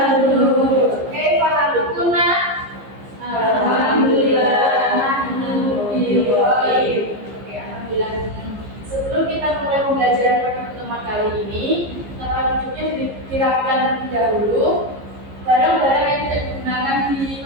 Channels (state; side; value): late; left; 15 ms